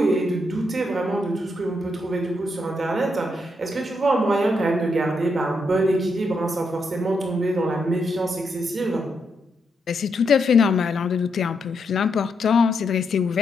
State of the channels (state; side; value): normal; both; correlation 0.80